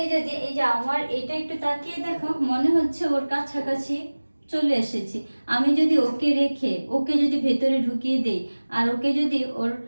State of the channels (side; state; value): both; inverted; correlation -1.00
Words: যদি এই যে আমার এটা একটু তাকিয়ে দেখো, মনে হচ্ছে ওর কাছাকাছি চলে এসেছি। আমি যদি ওকে রেখে ওকে যদি ভেতরে ঢুকিয়ে দেই আর ওকে যদি ওর